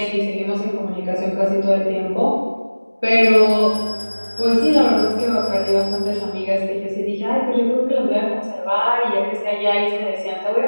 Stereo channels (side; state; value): both; inverted; correlation -1.00